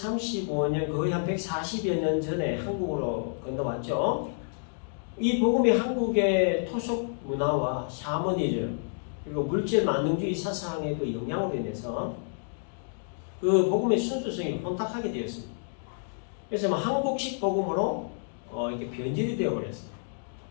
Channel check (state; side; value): silent; right; digital silence